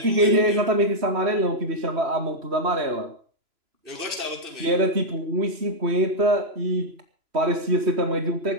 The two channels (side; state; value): left; late; 3.0 ms